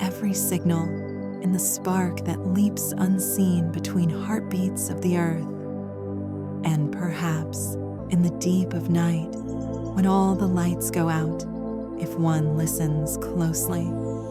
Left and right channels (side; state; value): both; identical; correlation 1.00